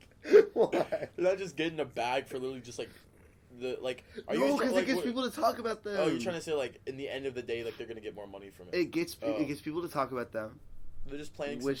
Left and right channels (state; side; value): identical; both; correlation 1.00